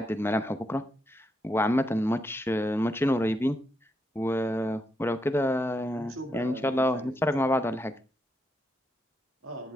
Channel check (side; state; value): both; normal; correlation 0.81